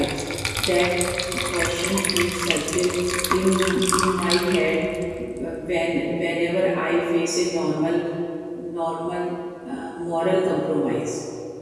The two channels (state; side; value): identical; both; correlation 1.00